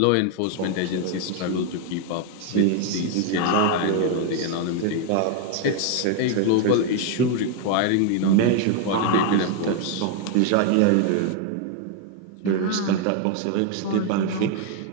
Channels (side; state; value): both; different; correlation 0.00